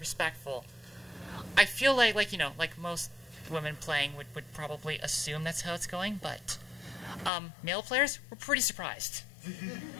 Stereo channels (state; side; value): drops out; right; at 7.3 s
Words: I feel like you know, like most women playing would probably assume that's how it's going, but male players were pretty surprised.